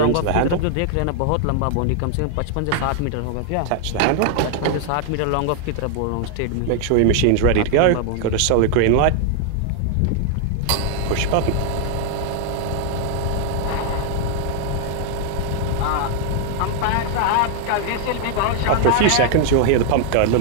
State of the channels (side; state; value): both; different; correlation 0.00